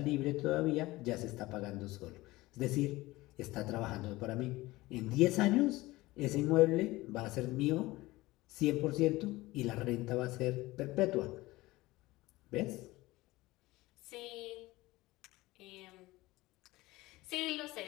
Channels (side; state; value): right; quieter; 19.4 dB